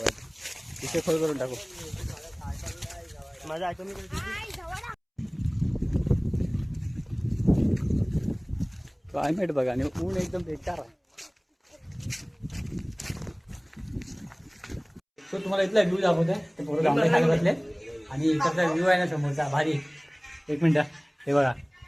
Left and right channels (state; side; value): identical; both; correlation 1.00